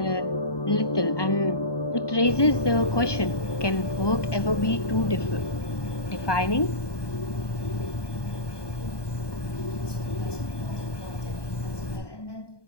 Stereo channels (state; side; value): late; right; 1.2 ms